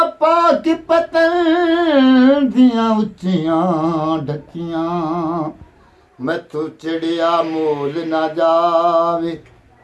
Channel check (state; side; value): identical; both; correlation 1.00